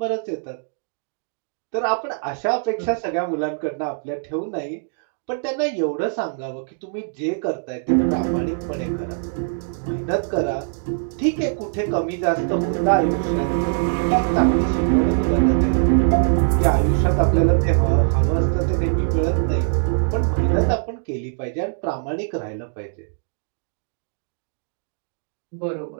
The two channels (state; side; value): silent; left; digital silence